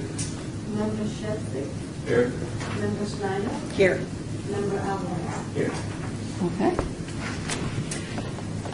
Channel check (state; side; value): identical; both; correlation 1.00